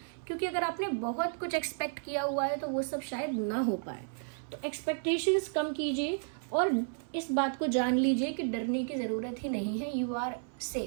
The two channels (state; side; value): silent; left; 56 dB below the other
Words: क्योंकि अगर आपने बहुत कुछ एक्सपेक्ट किया हुआ है तो वो सब शायद ना हो पाए। तो एक्सपेक्टेशंस कम कीजिए और इस बात को जान लीजिए कि डरने की ज़रूरत ही नहीं है, you are